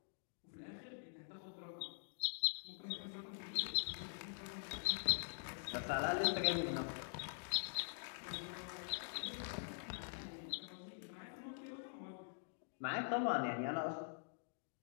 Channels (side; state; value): right; silent; digital silence